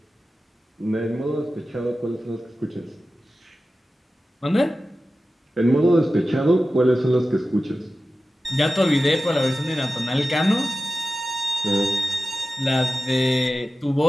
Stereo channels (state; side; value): normal; both; correlation 0.94